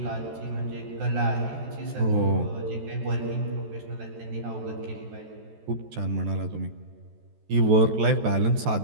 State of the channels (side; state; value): left; late; 14 ms